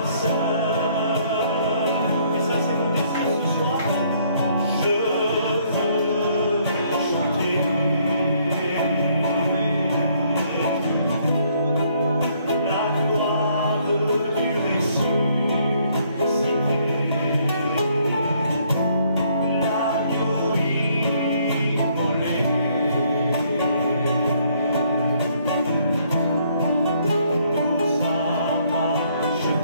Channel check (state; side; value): inverted; both; correlation -0.66